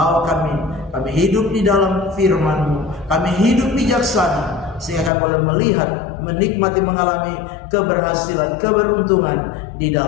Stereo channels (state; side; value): drops out; right; at 5.1 s